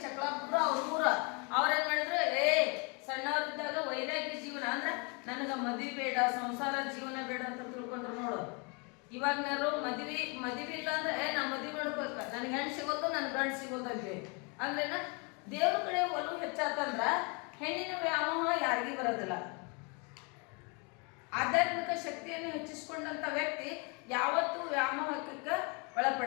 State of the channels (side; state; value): right; quieter; 32.7 dB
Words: ಚಕ್ಲಾಪುರ ಅವ್ರ ಊರ. ಅವ್ರೇನ್ ಮಾಡಿದ್ರು, ಸಣ್ಣವರಿದ್ದಾಗ ವೈರಾಗ್ಯ ಜೀವನ ಅಂದ್ರೆ ನನಗ ಮದ್ವಿ ಬೇಡ, ಸಂಸಾರ ಜೀವನ ಬೇಡ ಅಂತ ತಿಳ್ಕೊಂಡ್ರು ನೋಡು. ಇವಾಗನಾರು ಮದ್ವಿ ಇಲ್ಲ ಅಂದ್ರೆ ನಾ ಮದ್ವಿ ಮಾಡ್ಬೇಕ, ನನ್ಗೆ ಹೆಣ್ಣು ಸಿಗೋದು ನನ್ ಗಂಡು ಸಿಗೋದು ಅಂತೆ. ಅಂದ್ರೇನ ದೇವ್ರ ಕಡೆ ಒಲವು ಹೆಚ್ಚಾತಂದ್ರ ಹೆಣ್ಣಿನ ವ್ಯಾಮೋಹ ಯಾರಿಗೂ ಬರೋದಿಲ್ಲ. ಆಧ್ಯಾತ್ಮಿಕ ಶಕ್ತಿಯನ್ನು ಹೆಚ್ಚಿಸಿಕೊಂಡಂತ ವ್ಯಕ್ತಿ ಯಾವತ್ತೂ ವ್ಯಾಮೋಹಕ್ಕೆ